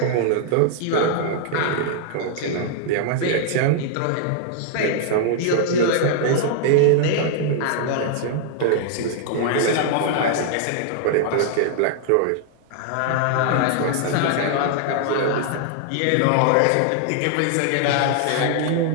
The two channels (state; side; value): different; both; correlation -0.01